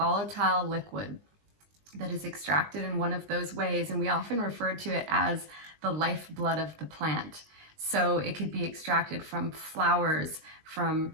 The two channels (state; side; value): late; left; 20 ms